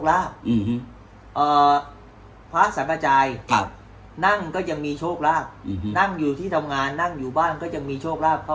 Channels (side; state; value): both; identical; correlation 1.00